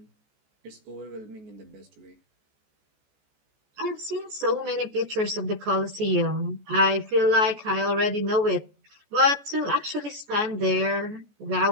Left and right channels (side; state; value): left; late; 14 ms